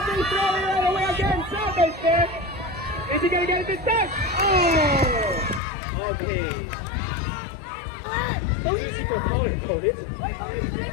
throw it all the way again. Selva's there. Is he gonna get it this time? Oh! Okay. So easy for color coded.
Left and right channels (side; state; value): right; drops out; at 5.6 s